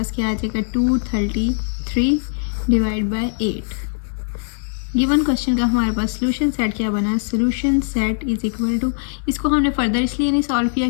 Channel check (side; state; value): right; silent; digital silence